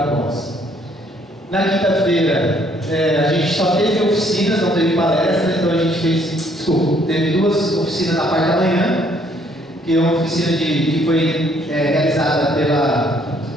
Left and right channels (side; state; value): both; normal; correlation 0.65